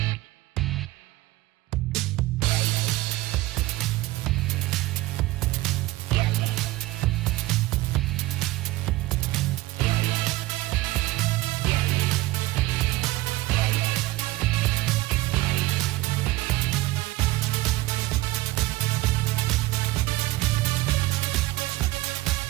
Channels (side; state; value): left; quieter; 18.7 dB